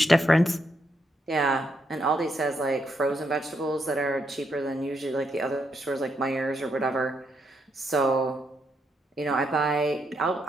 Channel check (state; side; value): normal; both; correlation 0.78